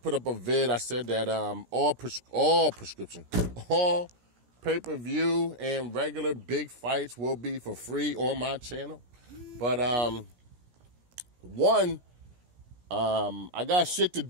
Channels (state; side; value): late; left; 17 ms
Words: put up a vid. I said that all pay-per-view and regular big fights will be for free on my channel. But I got shit to